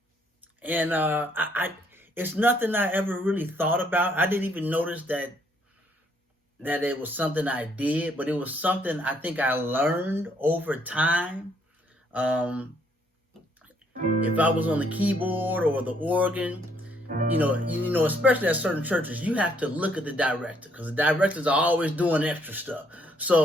And it's nothing I ever really thought about. I didn't even notice that it was something I did, but it was something I think I learned over time. Um, if I was on the keyboard or the organ, especially at certain churches, you have to look at the director because the directors are always doing extra stuff.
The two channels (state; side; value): normal; both; correlation 0.68